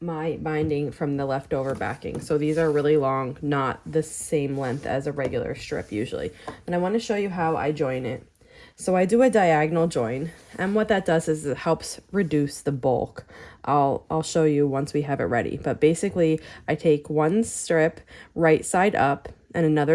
my binding from the leftover backing. So these are really long, not the same length as a regular strip usually. And I want to show you how I join it. So I do a diagonal join, and what that does is it helps reduce the bulk. I'll show you once we have it ready. But basically, I take one strip right side up and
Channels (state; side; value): identical; both; correlation 1.00